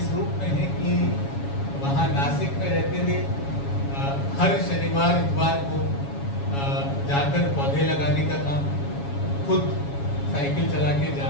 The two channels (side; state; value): right; late; 7.2 ms